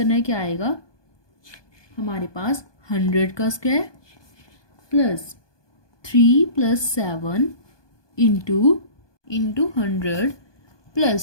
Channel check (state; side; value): late; right; 1.2 ms